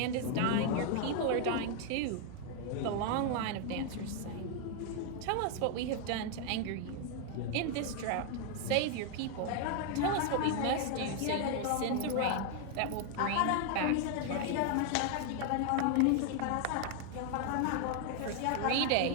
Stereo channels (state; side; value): different; both; correlation 0.00